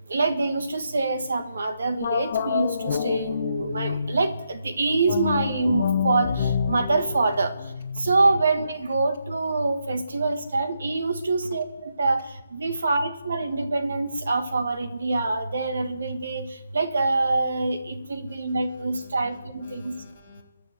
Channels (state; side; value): inverted; both; correlation -0.82